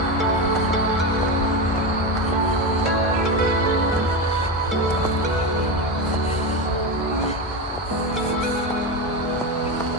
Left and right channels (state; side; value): normal; both; correlation 0.16